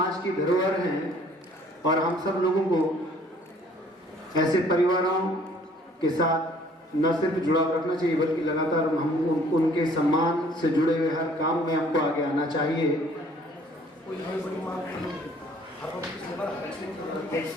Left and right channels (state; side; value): normal; both; correlation 0.57